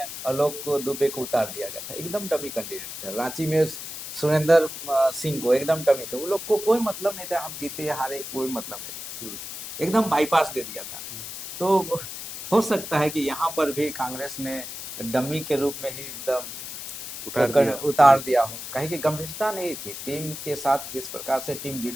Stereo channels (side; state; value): left; noise; hiss, 8 dB below the sound